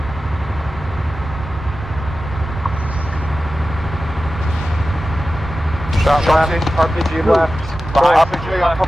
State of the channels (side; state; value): both; normal; correlation 0.94